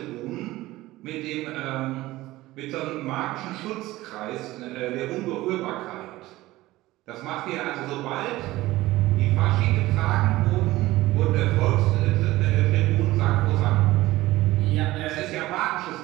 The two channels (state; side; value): quieter; left; 17.7 dB